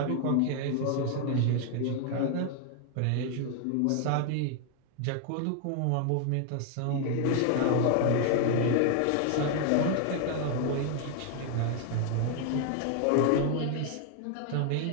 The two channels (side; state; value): both; different; correlation 0.00